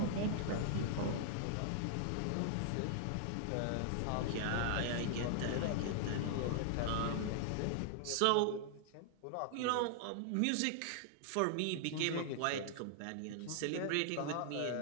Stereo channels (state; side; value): different; both; correlation 0.00